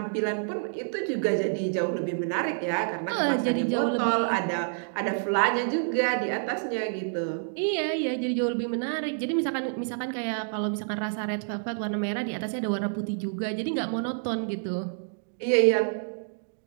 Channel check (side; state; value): left; silent; digital silence